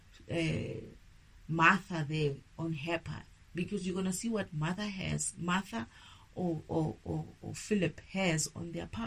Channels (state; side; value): identical; both; correlation 1.00